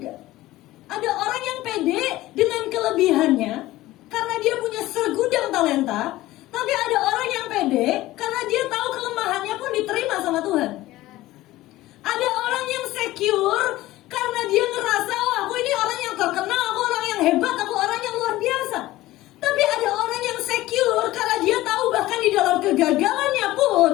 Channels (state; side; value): quieter; right; 16.9 dB